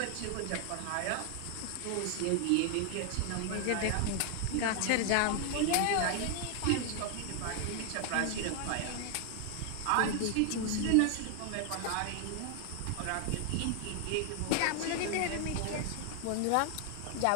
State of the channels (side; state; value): both; different; correlation 0.00